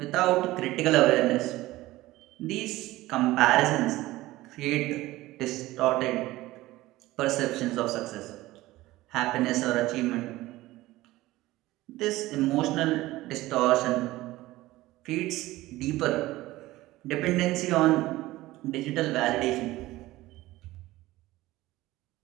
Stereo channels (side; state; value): left; quieter; 17.7 dB